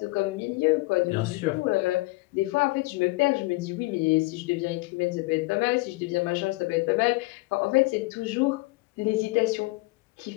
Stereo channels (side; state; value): right; quieter; 22.6 dB